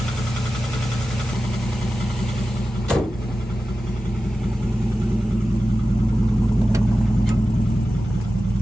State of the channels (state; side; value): normal; both; correlation 0.94